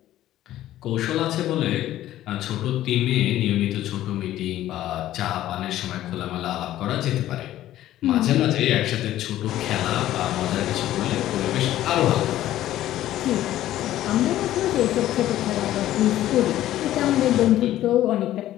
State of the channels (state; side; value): quieter; right; 13.6 dB